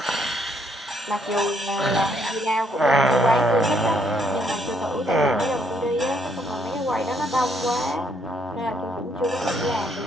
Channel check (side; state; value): both; normal; correlation 0.70